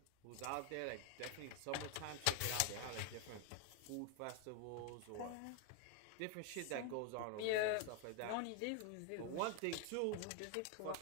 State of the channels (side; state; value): both; different; correlation 0.00